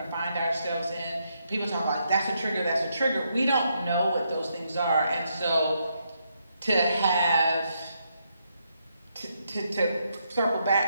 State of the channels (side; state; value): both; inverted; correlation -0.78